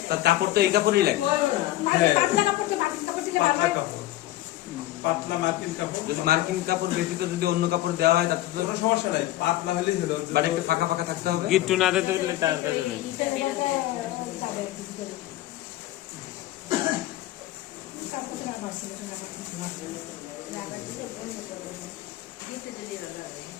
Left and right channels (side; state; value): right; quieter; 15.5 dB